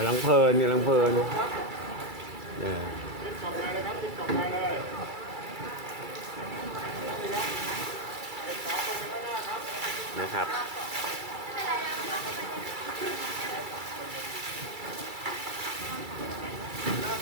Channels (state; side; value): late; left; 2.3 ms